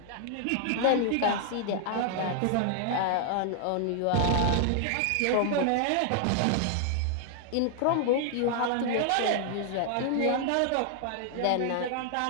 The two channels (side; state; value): both; different; correlation 0.00